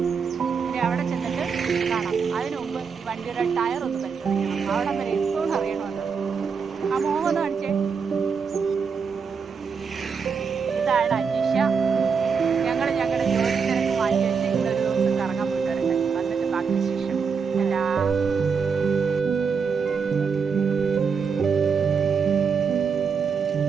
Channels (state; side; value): quieter; left; 5.9 dB